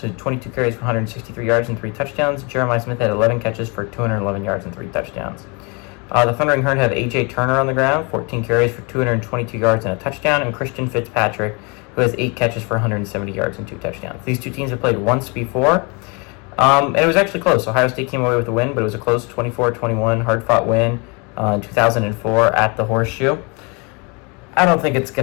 had 22 carries for 163 yards and 3 touchdowns. Jeremiah Smith had 11 catches for 211 yards and 3 touchdowns. The Thundering Herd have A.J. Turner on the ground, 14 carries for 222 yards and a touchdown, and Christian Fitzpatrick, who has 8 catches for 170 yards and 2 touchdowns. These two teams have played once before, and it was actually close. Ohio State came away with the win, but it was a close 24-21, hard-fought win in 2004 at the Horseshoe. I don't think it's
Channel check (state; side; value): quieter; right; 31.0 dB